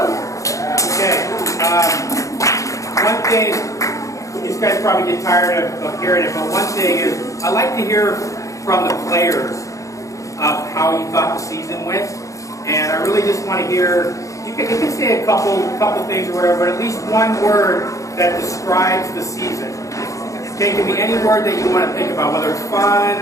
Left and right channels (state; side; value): late; right; 0.16 ms